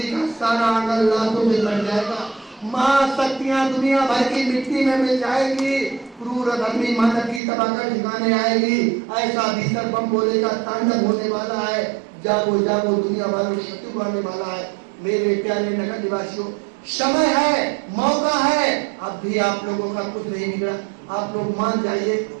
का सारा आंगन लाशों में बच जाएगा। महाशक्तियां दुनिया भर की मिट्टी में मिल जाएगी, क्रूर धर्मी मानव की तबाकर ठिकाने आएगी। ऐसा भीषण बम बोले का तांडव होने वाला है। जागो जागो दुनिया वालों, शत्रु आने वाला है। मेरे प्यारे नगर निवासियों, समय है, मौका है, अब भी आप लोगों का कुछ नहीं बिगड़ा। आप लोग मान जाइए,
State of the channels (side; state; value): left; drops out; at 7.4 s